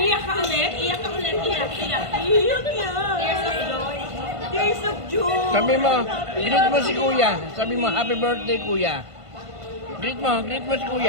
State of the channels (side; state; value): left; late; 1.5 ms